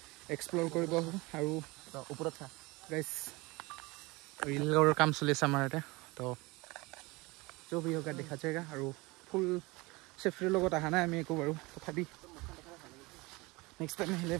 এক্সপ্ল'ৰ কৰিব আহোঁ আৰু ওপৰত গাইছ ৰিলৰ কাম চলি আছে আমাৰ ইয়াতে তো जो भी होगा দেখা যায়গা আৰু ফুল চেফটিৰ লগত অহা নাই আমি একো বাৰু তথাপি নেক্সট টাইম আহিলে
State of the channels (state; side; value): quieter; left; 23.7 dB